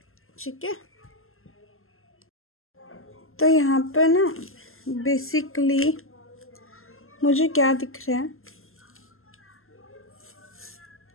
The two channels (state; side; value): late; right; 0.61 ms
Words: ठीक है, तो यहाँ पर ना बेसिकली मुझे क्या दिख रहा है,